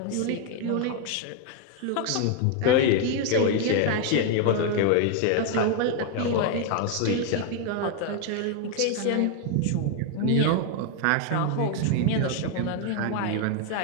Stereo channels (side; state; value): both; different; correlation 0.01